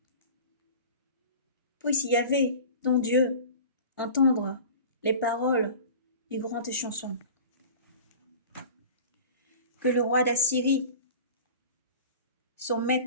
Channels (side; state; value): both; inverted; correlation -0.38